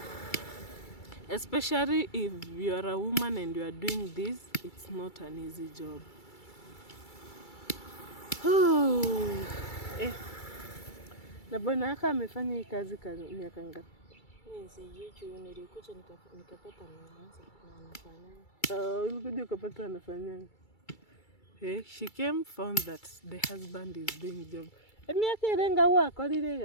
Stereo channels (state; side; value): late; right; 2.3 ms